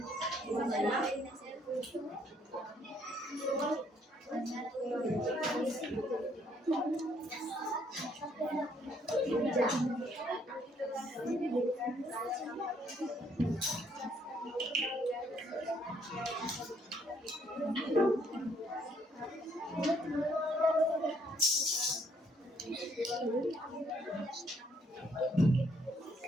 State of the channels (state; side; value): normal; both; correlation 0.67